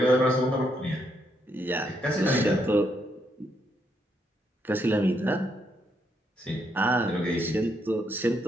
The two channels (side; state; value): both; normal; correlation 0.76